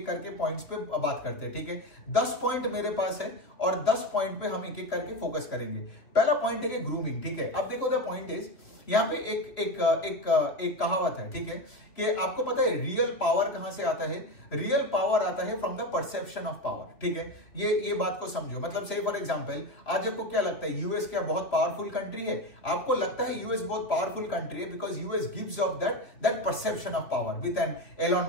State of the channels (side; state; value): right; late; 2.7 ms